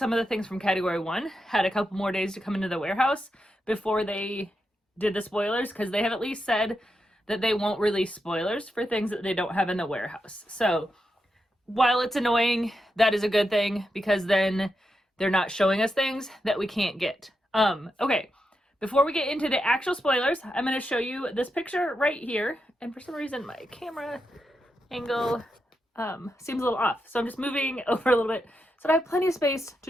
of the things from Category 1 had a couple more days to come into the warehouse before they did the spoilers, because they have at least said that they won't release spoilers for things that they don't have in the warehouse. So while it's annoying, that is a good thing, because then they're not showing us things that we can't get. Okay, before we get into the actual spoilers, I'm going to show you this picture right here. And for some reason, my camera angle seems a little off. So I'm just moving over a little bit so that I have plenty of space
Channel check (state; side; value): normal; both; correlation 0.86